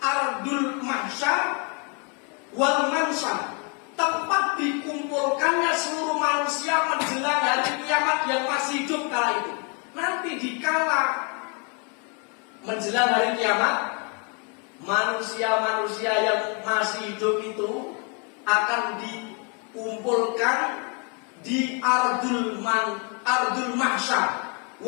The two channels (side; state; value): right; quieter; 34.8 dB